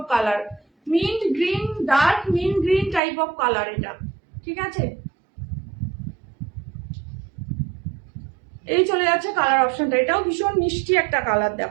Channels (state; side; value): drops out; left; at 3.0 s